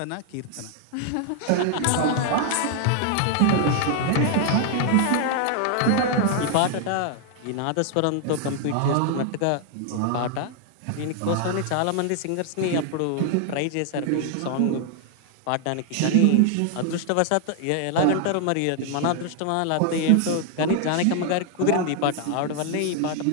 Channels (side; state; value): both; different; correlation 0.00